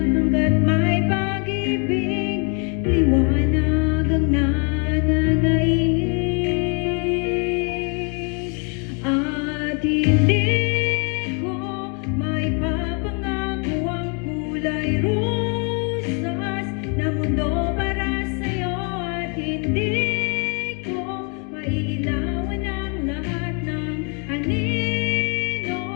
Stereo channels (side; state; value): right; quieter; 36.7 dB